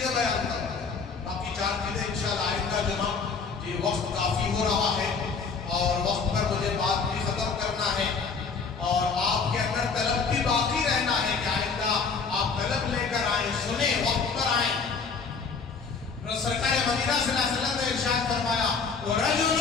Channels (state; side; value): quieter; right; 5.1 dB